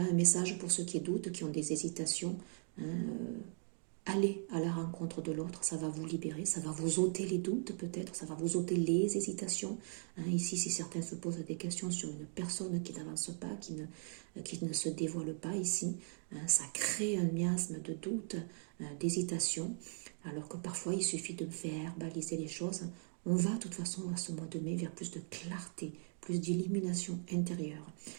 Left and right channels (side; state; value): left; silent; 52 dB below the other